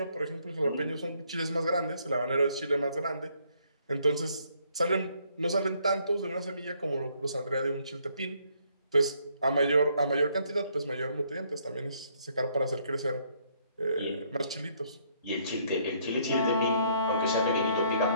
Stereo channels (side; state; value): both; inverted; correlation -0.68